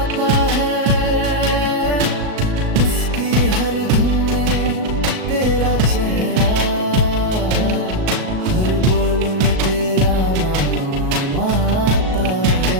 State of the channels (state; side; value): late; left; 37 ms